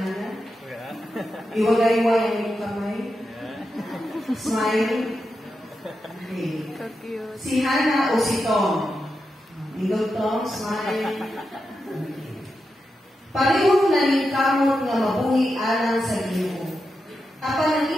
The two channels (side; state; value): both; normal; correlation 0.88